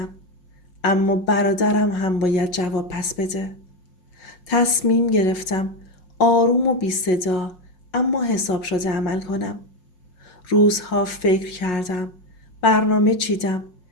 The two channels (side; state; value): right; late; 5.5 ms